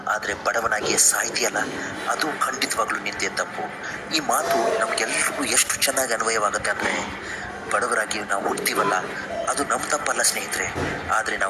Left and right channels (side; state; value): both; identical; correlation 1.00